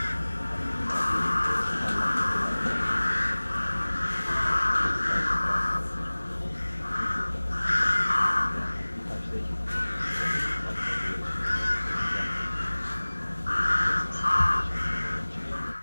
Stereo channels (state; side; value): inverted; both; correlation -1.00